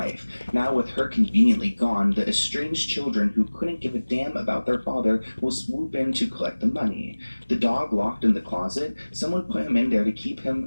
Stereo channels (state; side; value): inverted; both; correlation -1.00